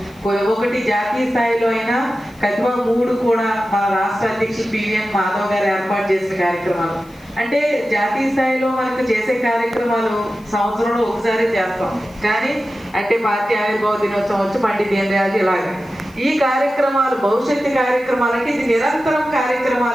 ఒకటి జాతీయ స్థాయిలో అయినా కతిమ 3 కూడా మన రాష్ట్ర అధ్యక్షులు పివిఎన్ మాధవ్ గారు ఏర్పాటు చేసిన కార్యక్రమాలు. అంటే జాతీయ స్థాయిలో మనకు చేసే కార్యక్రమాలు సంవత్సరంలో ఒకసారి చేస్తాం, కానీ అంటే పార్టీ ఆవిర్భావ దినోత్సవం వచ్చి పండిత్ దీన్ దయాళ్ ఇలాగే ఈ కార్యక్రమాలు భవిష్యత్తు కార్యక్రమాలు అంటే ఇది నిరంతరం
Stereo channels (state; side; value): noise; left; hiss, 28 dB below the sound